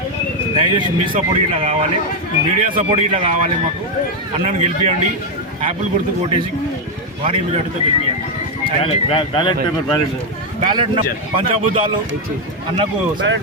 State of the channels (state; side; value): normal; both; correlation 0.03